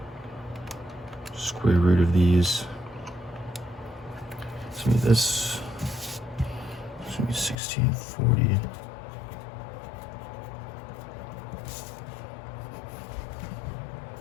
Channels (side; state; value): right; drops out; at 7.6 s